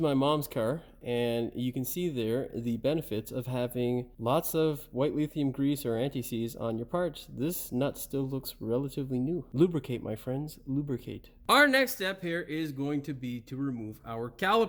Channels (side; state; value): both; identical; correlation 1.00